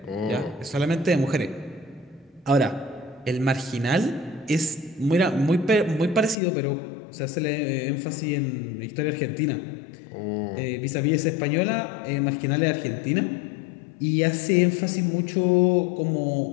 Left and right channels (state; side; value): drops out; right; at 6.4 s